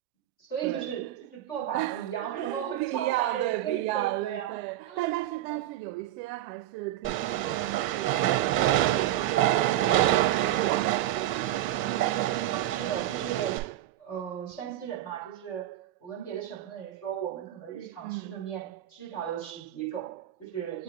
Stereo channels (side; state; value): left; quieter; 13.3 dB